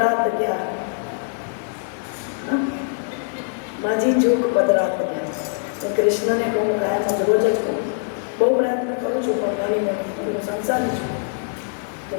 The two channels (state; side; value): silent; right; 64 dB below the other